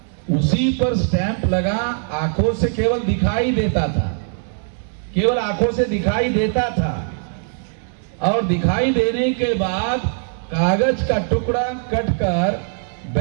उसी पर स्टैंप लगा, आंखों से केवल दिखाई देता था, केवल आंखों से दिखाई देता था। और दिखाई देने के बाद कागज का टुकड़ा कटकर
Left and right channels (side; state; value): left; silent; digital silence